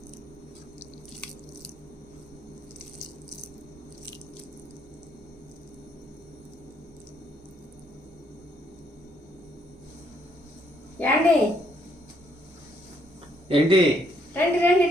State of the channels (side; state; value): right; noise; rumble, 28 dB below the sound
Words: యాండి ఏంటి రండి